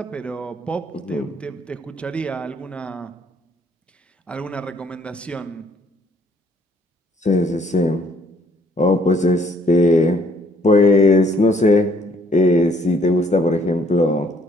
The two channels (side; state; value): both; normal; correlation 0.64